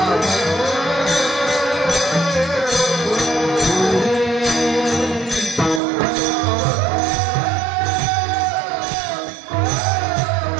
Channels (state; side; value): drops out; left; at 5.8 s